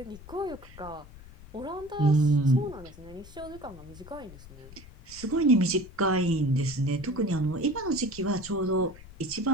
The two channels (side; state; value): left; noise; rumble, 18 dB below the sound